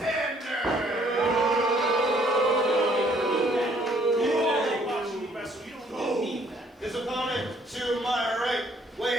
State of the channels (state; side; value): normal; both; correlation 0.63